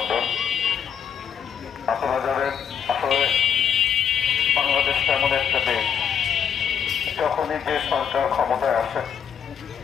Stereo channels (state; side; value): quieter; right; 7.8 dB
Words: আপনারা জানেন, আসলে বাংলাদেশ এমন একটা দেশ, যখনই যে সরকার ক্ষমতায় আসে